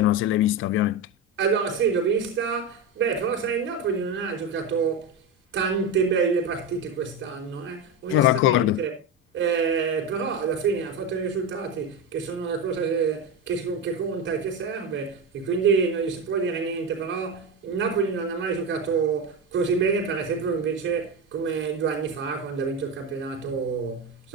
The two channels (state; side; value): normal; both; correlation 0.16